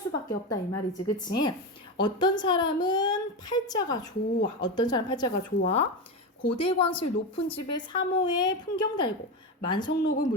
없다 이 말이지, 그치? 어떤 사람은 팔자가 좋아. 어떤 사람 팔자가 좋아. 고대광실 높은 집에 사모에 풍경 달고 만성록을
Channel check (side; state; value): both; normal; correlation 0.17